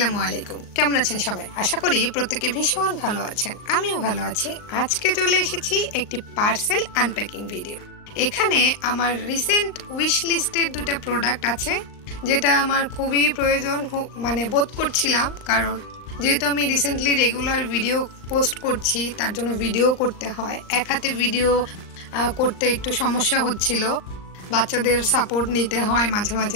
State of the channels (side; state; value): right; late; 39 ms